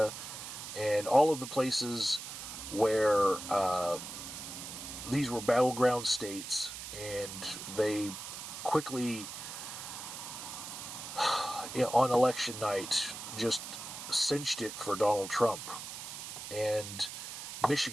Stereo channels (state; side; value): noise; right; hiss, 9 dB below the sound